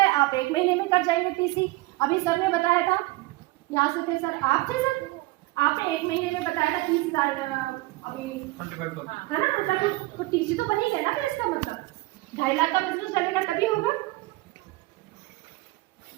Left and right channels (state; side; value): quieter; left; 21.0 dB